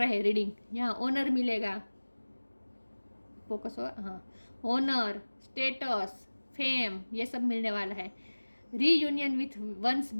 हैं रीडिंग। यहाँ ऑनर मिलेगा, फोकस हो, हाँ, ऑनर, स्टेटस, फेम, ये सब मिलने वाला है। रीयूनियन विथ वंस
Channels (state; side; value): inverted; both; correlation -1.00